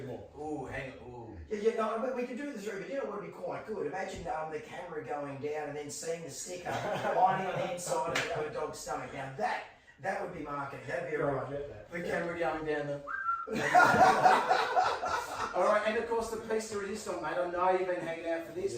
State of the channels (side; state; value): both; identical; correlation 1.00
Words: more. Ooh, hang on. Ooh. Yeah, no, but we can do the three, but you know what would be quite good? Imagine the camera going down and then seeing the sticker lining on the inside of a dog's stomach. Now that would be marketing. That'd be alright. The camera going down the. Alright, and of course the piece de resistance, mate. I know you've been hanging out for